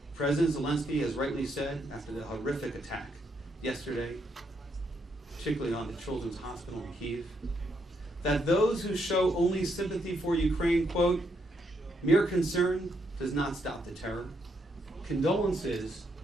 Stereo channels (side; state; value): both; normal; correlation 0.76